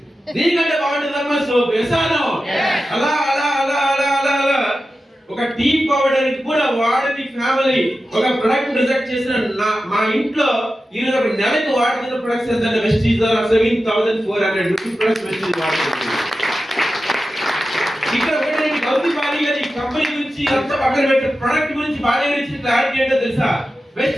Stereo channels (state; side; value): normal; both; correlation 0.93